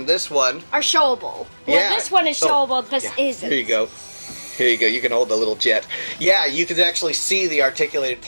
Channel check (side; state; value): both; inverted; correlation -1.00